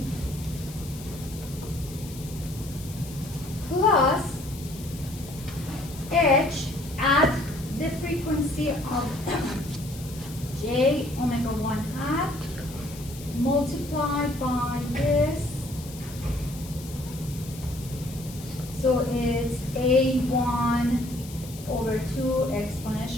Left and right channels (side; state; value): left; noise; hiss, 16 dB below the sound